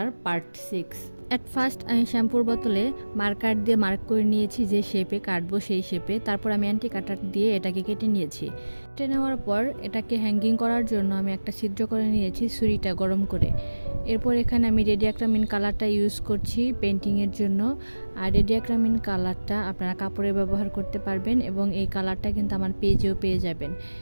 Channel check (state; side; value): inverted; both; correlation -1.00